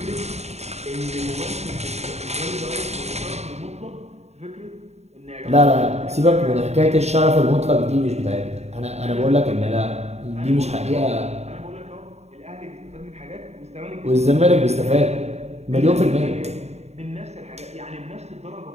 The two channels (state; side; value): late; left; 0.32 ms